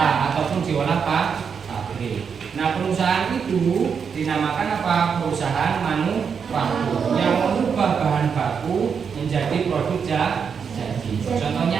ataupun diolah pabrik. Nah, perusahaan itu dinamakan apa? Perusahaan manufaktur yang mengubah bahan baku menjadi produk jadi. Contohnya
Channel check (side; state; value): left; quieter; 6.5 dB